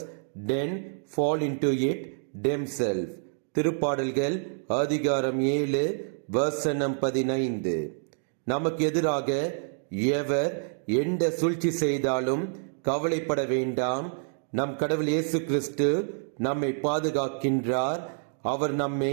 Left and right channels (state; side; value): silent; left; digital silence